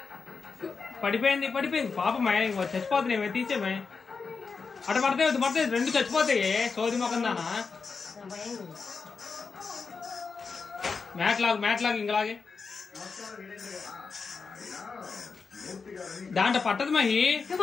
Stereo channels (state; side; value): quieter; right; 5.0 dB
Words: పడిపోయింది పాపం చచ్చిపోతున్నాయి, తీసేమే అటు పడతాయి రెండు చచ్చిపోతాయి. సోది మొక్కం దానా మ్యాట్ లాగు ఇంకలాగే దాంట్లో పట్టదు మహి,